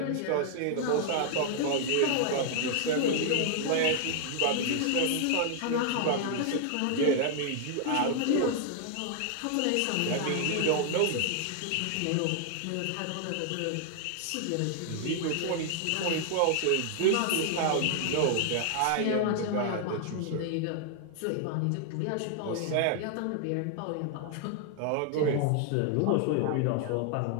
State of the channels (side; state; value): both; different; correlation 0.00